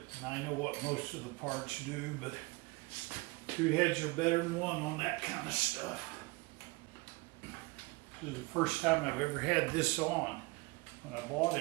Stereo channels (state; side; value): quieter; left; 25.2 dB